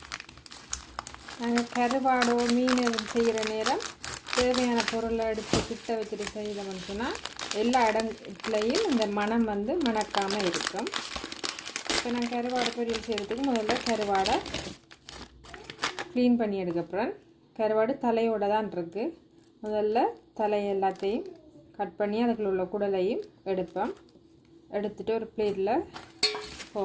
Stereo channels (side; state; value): both; identical; correlation 1.00